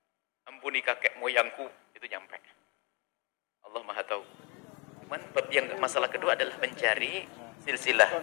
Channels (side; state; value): right; quieter; 31.5 dB